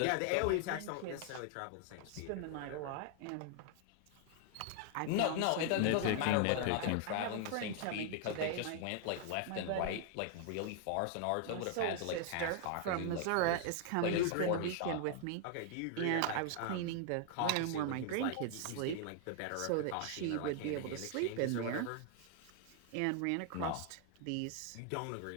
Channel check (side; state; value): both; different; correlation 0.00